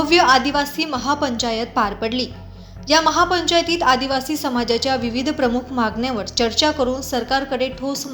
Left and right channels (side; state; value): both; identical; correlation 1.00